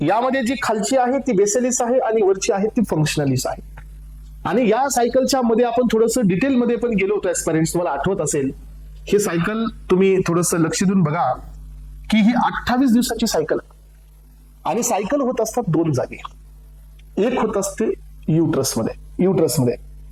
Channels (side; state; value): both; identical; correlation 1.00